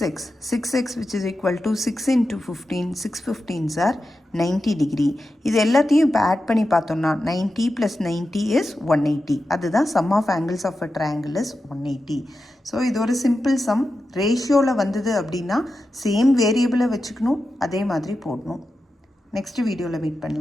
6x which is equal to 6 into 15, 6 15s are 90 degree. இது எல்லாத்தையும் இப்போ add பண்ணி பார்த்தோம்னா 90 + 90 is 180. அதுதான் sum of angles of a triangle is 180. So இது ஒரு சிம்பிள் சம். ரேஷியோவில் வந்தது அப்படின்னா சேம் வேரியபிளை வச்சுக்கணும், அதே மாதிரி போடணும். நெக்ஸ்ட் வீடியோவில் மீட்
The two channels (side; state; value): both; normal; correlation 0.91